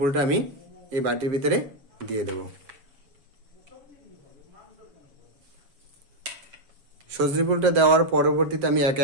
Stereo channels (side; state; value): left; late; 7.1 ms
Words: আমি এই বাটির ভিতরে দিয়ে দেব। সজনে ফুলটা দেওয়ার পরবর্তীতে আমি একে